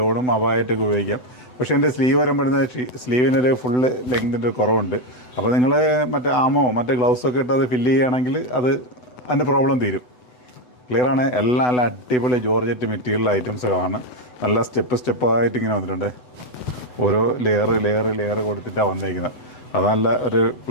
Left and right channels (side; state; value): right; late; 8.0 ms